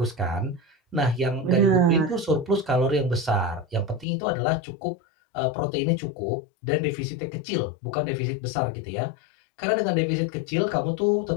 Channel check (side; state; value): right; drops out; at 4.0 s